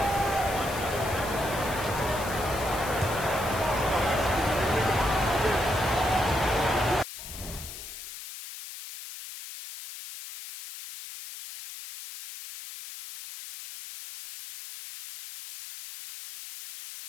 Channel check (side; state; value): left; noise; hiss, 11 dB below the sound